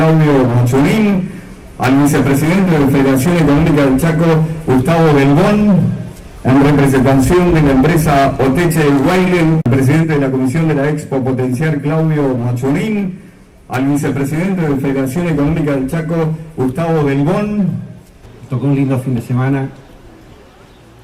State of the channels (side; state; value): both; identical; correlation 1.00